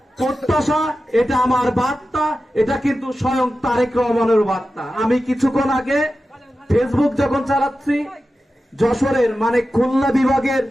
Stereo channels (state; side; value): normal; both; correlation 0.93